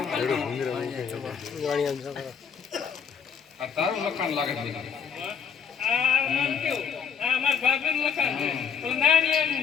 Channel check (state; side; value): quieter; right; 6.9 dB